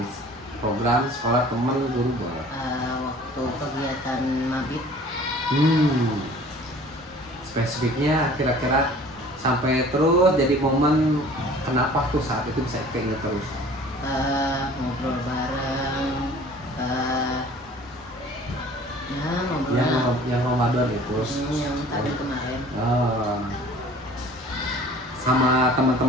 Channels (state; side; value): normal; both; correlation 0.48